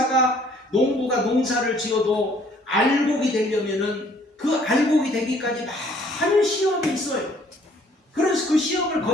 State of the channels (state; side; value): normal; both; correlation 0.60